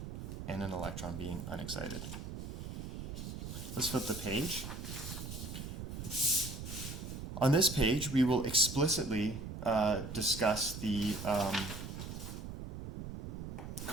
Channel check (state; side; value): noise; right; rumble, 7 dB below the sound